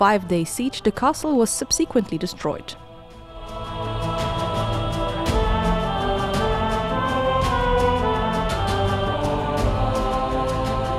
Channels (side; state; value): both; identical; correlation 1.00